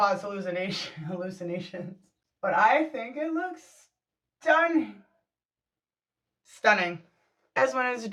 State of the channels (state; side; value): identical; both; correlation 1.00